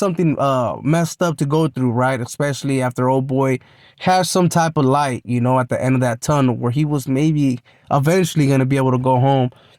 messed up to go through, right? Especially after old boy has some type of light, you know, at the end of that tunnel where he was maybe eventually going to be able to go home.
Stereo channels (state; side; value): identical; both; correlation 1.00